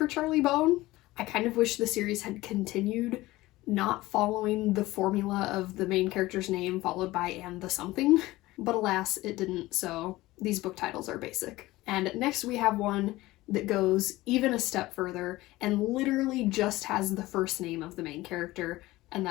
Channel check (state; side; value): quieter; right; 18.4 dB